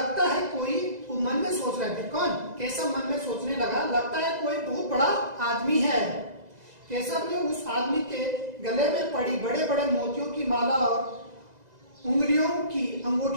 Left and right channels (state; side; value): late; left; 2.0 ms